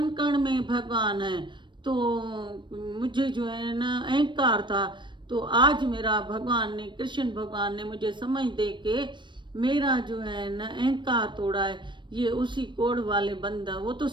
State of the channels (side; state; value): left; late; 0.22 ms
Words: कण में भगवान है। तो मुझे जो है ना अहंकार था। तो आज मेरा भगवान ने, कृष्ण भगवान ने मुझे समझ दे के मेरा जो है ना अहंकार तोड़ा है। ये उसी कोढ़ वाले बंदा, वो तो